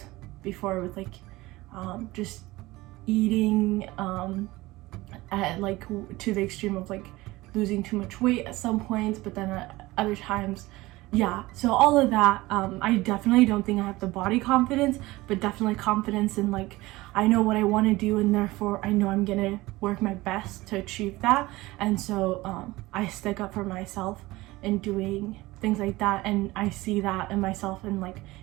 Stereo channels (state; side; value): quieter; left; 19.6 dB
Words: before with like just eating at like to the extreme of like losing too much weight at some points, but then at other times, yeah. So all of that, I definitely don't think I have the body confidence, but definitely confidence in like, I know what I want to do, and therefore I know I'm gonna work my best to achieve that. And so I stick up for myself in doing things like that, and I see that in myself in like